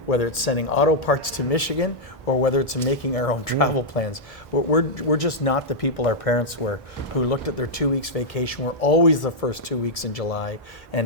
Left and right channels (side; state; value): both; normal; correlation -0.06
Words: whether it's sending auto parts to Michigan, or whether it's making our own travel plans. We're just not the people our parents were, who looked at their 2 weeks vacation. We're always the first 2 weeks in July,